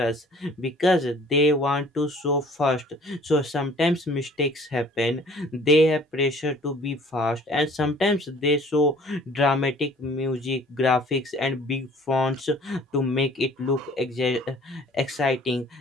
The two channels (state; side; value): normal; both; correlation 0.52